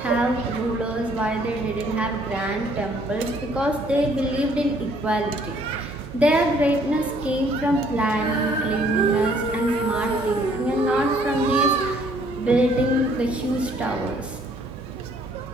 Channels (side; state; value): right; noise; hum, 16 dB below the sound